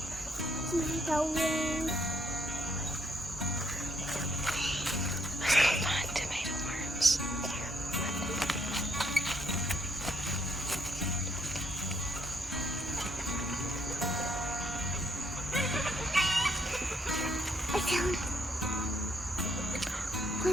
Let's go find tomato worms.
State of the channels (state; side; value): normal; both; correlation 0.72